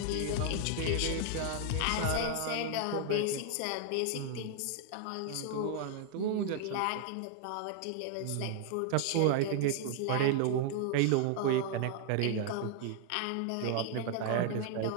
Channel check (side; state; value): both; different; correlation 0.00